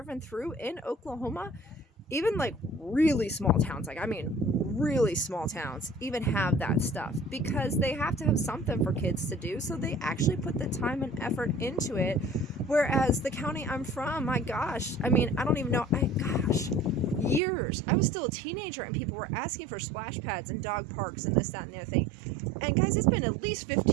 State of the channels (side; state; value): left; drops out; at 17.4 s